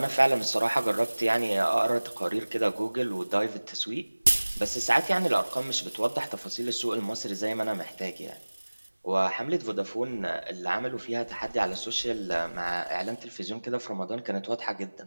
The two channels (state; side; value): inverted; both; correlation -1.00